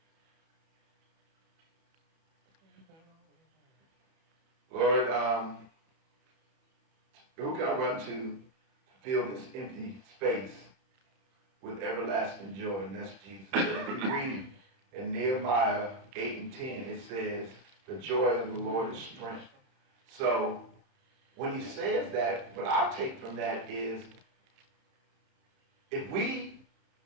Lord, who can I run to fill this empty space with everlasting joy? And that's Jesus. And if you read in Nehemiah 8 and 10, it says, the joy of the Lord is strength. So when he says that, what I take from that is, if we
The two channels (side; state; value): left; late; 31 ms